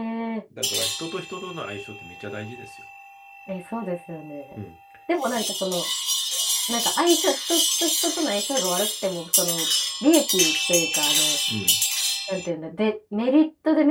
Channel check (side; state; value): both; identical; correlation 1.00